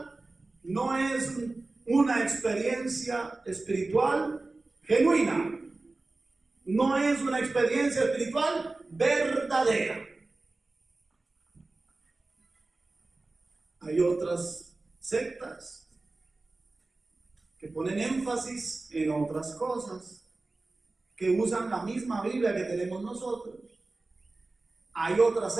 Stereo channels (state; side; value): quieter; left; 3.3 dB